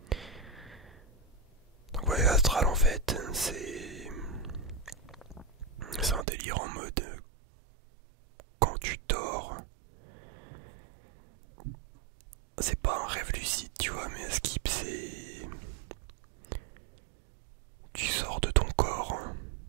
Donc voyage astral en fait, c'est un délire en mode quand tu dors, c'est pas un rêve lucide, tu vois, mais un skip, c'est tu sors de ton corps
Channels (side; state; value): left; drops out; at 6.2 s